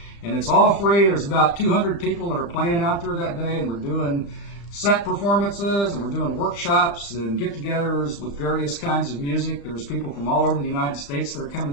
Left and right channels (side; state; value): right; late; 35 ms